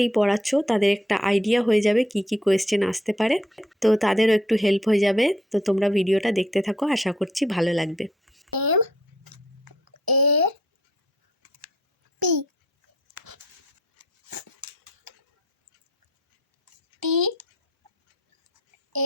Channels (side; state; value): both; normal; correlation 0.66